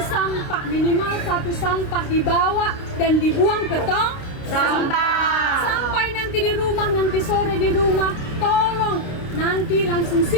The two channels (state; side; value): late; right; 29 ms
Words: minimal satu sampah dibawa dan dibuang ke tong sampah. Sampai nanti di rumah, nanti sore di rumah, tolong nanti langsung